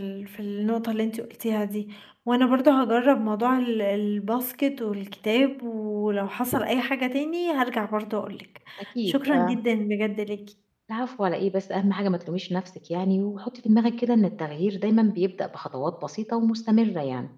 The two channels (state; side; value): identical; both; correlation 1.00